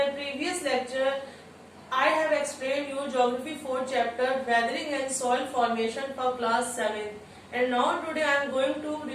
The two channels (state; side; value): identical; both; correlation 1.00